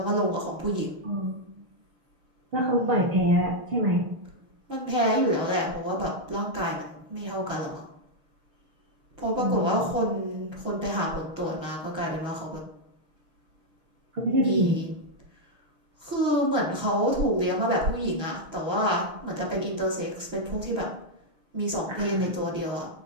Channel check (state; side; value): late; left; 6.5 ms